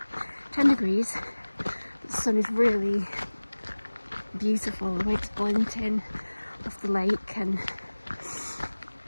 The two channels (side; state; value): both; inverted; correlation -1.00